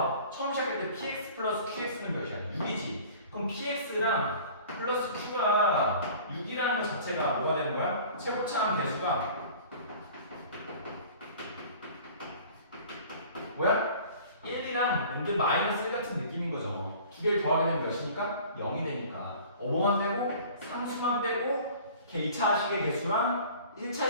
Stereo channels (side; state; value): both; inverted; correlation -0.46